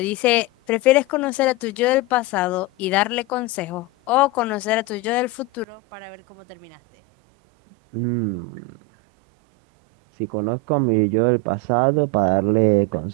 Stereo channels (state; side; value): drops out; left; at 5.7 s